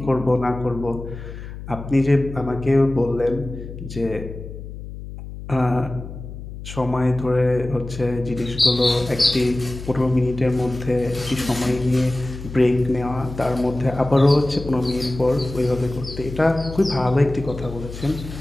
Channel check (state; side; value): noise; left; hum, 11 dB below the sound